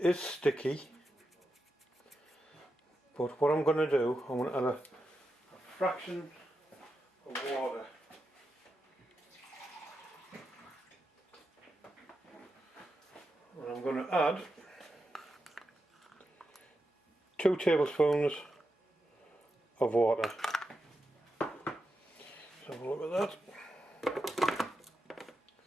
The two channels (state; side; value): normal; both; correlation 0.88